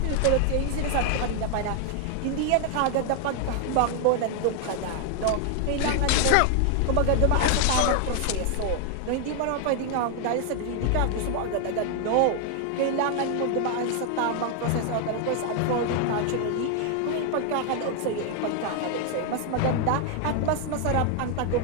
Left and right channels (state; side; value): different; both; correlation 0.00